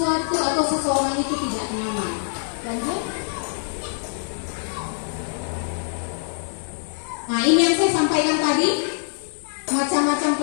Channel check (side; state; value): right; silent; 62 dB below the other